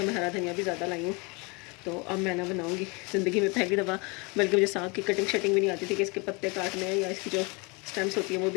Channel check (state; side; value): quieter; right; 29.0 dB